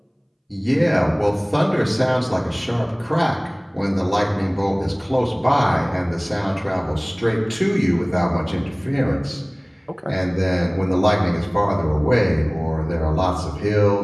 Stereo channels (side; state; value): both; identical; correlation 1.00